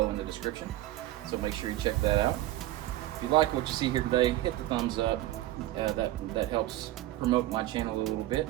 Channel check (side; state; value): left; quieter; 15.5 dB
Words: in the description, so make sure you check that out. If you like what you see here today, hit the thumbs up. That helps promote my channel a little bit,